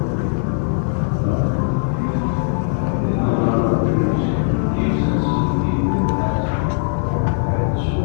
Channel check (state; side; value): silent; right; 66 dB below the other